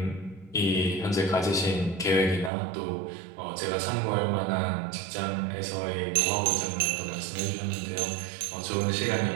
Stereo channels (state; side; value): drops out; left; at 2.5 s